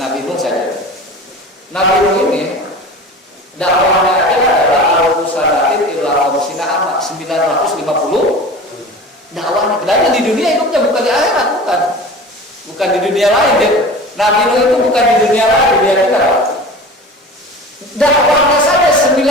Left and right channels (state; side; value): normal; both; correlation 0.36